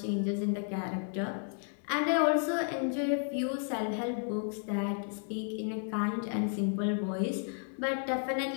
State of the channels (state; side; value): silent; right; 56 dB below the other